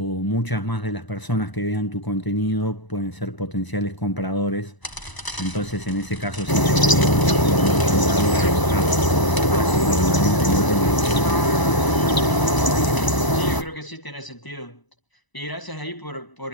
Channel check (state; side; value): late; right; 1.0 ms